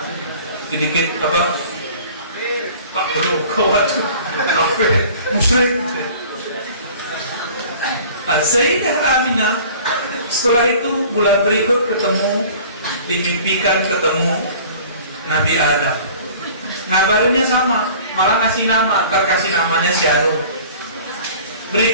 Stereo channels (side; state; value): both; inverted; correlation -0.46